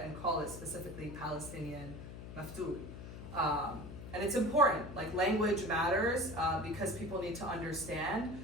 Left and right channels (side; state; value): left; noise; hum, 11 dB below the sound